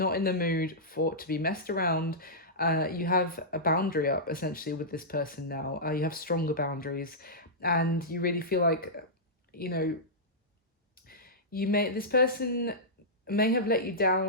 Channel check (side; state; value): both; normal; correlation -0.13